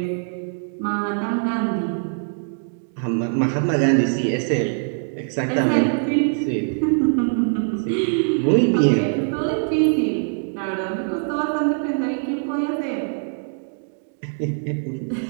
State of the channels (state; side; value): silent; left; digital silence